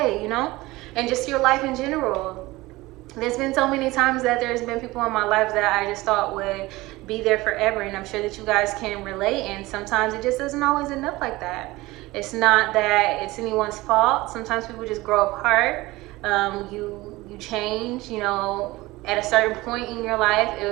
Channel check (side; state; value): left; quieter; 19.9 dB